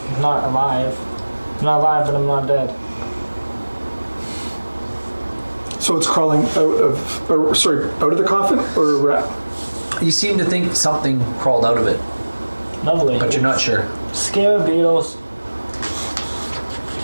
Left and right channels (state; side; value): inverted; both; correlation -1.00